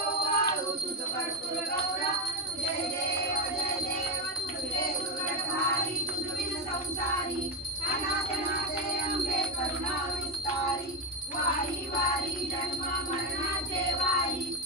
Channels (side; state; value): both; normal; correlation 0.11